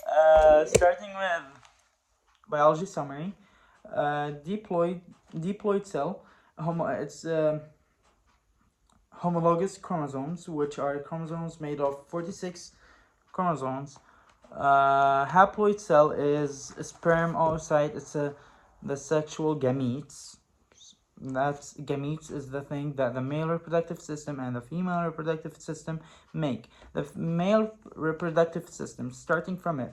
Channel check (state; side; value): identical; both; correlation 1.00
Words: with biology summary. Diploid cell, it's homologous chromosomes, which are chromosomes made of 46 chromosomes. Haploid cell is a sperm oocyte. It's the sexual gametes. That's gametes is the thing that the male reproductive system and the female reproductive system make. The male reproductive system, starting from